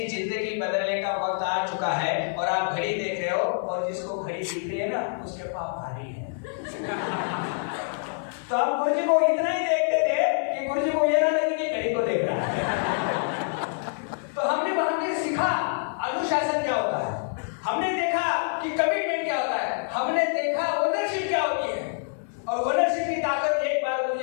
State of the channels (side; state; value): right; silent; 61 dB below the other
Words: जिंदगी बदलने का वक्त आ चुका है और आप घड़ी देख रहे हो, और जिसको घड़ी दिखते है ना उसके पाप भारी है। तो हम गुरुजी को इतना ही देखते थे कि गुरुजी को ये ना लगे कि घड़ी को देख रहा है। तो हमने सीखा अनुशासन क्या होता है, हमने देखा कि कमिटमेंट क्या होता है, हमने देखा ओनरशिप क्या होती है। और ओनरशिप की ताकत एक बार